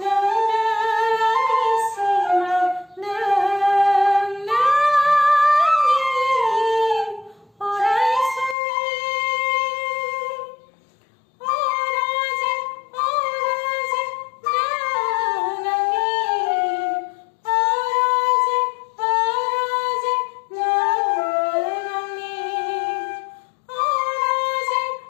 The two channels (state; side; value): drops out; right; at 8.6 s